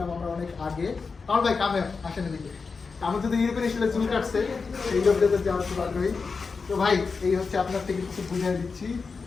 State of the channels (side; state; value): right; quieter; 4.8 dB